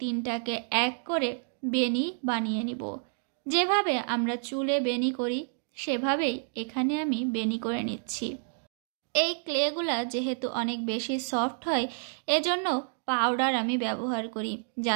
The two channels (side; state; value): left; silent; digital silence